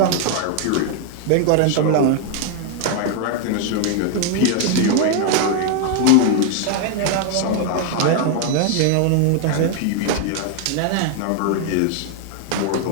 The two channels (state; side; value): different; both; correlation 0.00